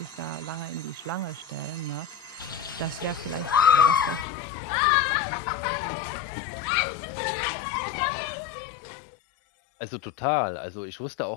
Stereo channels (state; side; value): drops out; right; at 4.2 s